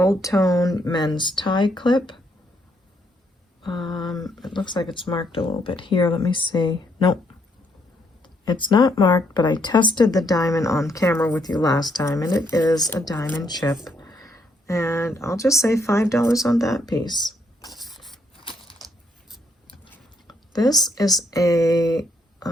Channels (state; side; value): normal; both; correlation 0.73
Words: tone men's tie clip. It looks like it's marked a little bit here. Let me see. Nope. It's not marked, but I tested the diamond on camera with you last time, and it is a diamond chip. And I'll just say $5 on that piece. This is a